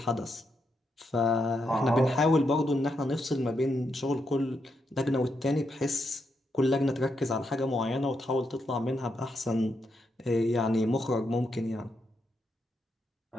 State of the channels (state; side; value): normal; both; correlation 0.81